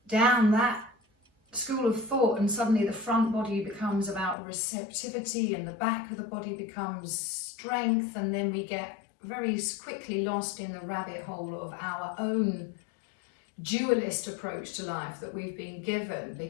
down that school of thought, and suddenly the front body becomes about receptivity and the back of the body becomes strength, and then we get very quickly lost in the rabbit hole of our own dualist approach to life that we've been given,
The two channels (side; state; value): right; drops out; at 4.4 s